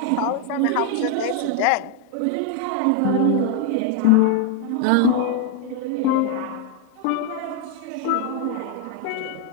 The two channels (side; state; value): both; different; correlation 0.01